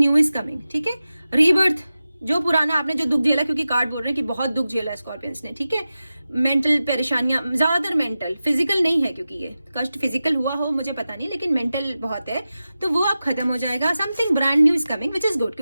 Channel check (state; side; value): inverted; both; correlation -0.94